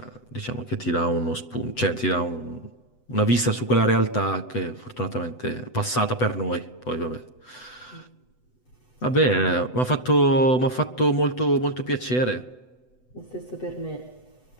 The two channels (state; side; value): late; right; 8.0 ms